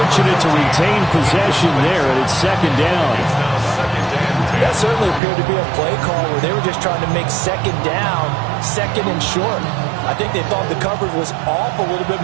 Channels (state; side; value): drops out; left; at 5.2 s